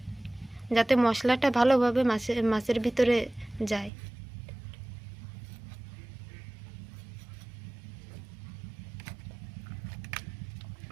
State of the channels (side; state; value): left; drops out; at 3.9 s